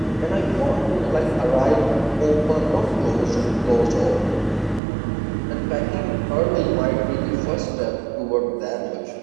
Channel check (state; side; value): drops out; left; at 4.8 s